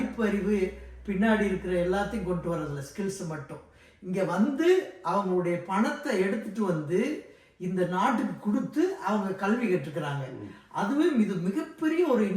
பின்னாடி இருக்கிற எல்லாத்தையும் கொண்டு வரதில்ல, ஸ்கில்ஸ் மட்டும். இங்க அவங்களுடைய பணத்தை எடுத்துட்டு இந்த நாட்டுக்கு கொடுத்து அவங்க கல்வி கற்றுக்கிறாங்க. அதுவே இது மிகப்பெரிய ஒரு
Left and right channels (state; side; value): identical; both; correlation 1.00